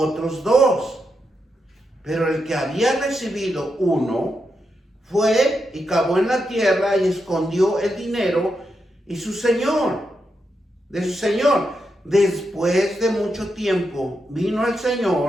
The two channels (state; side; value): normal; both; correlation 0.85